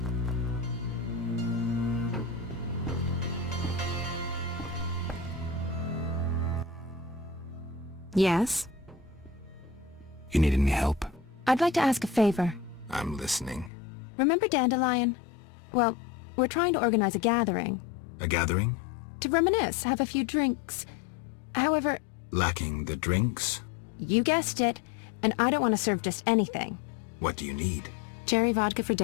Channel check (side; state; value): right; drops out; at 13.7 s